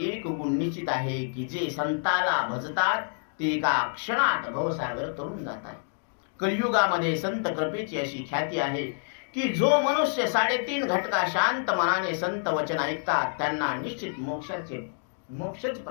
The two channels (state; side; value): silent; right; digital silence